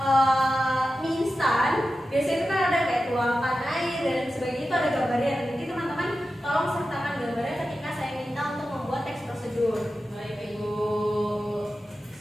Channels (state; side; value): normal; both; correlation 0.92